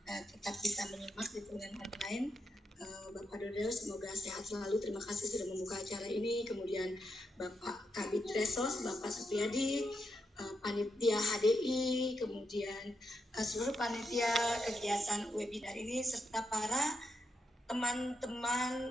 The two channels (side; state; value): both; normal; correlation 0.82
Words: tetap bisa menyimak di dengan online. Bapak Dodo semoga sehat selalu, terima kasih sudah membuka acara ini. Kemudian Bapak Kabid Resos, Bapak Supriyadi, panitia HDI, kemudian seluruh panitia kegiatan webinar ini, serta para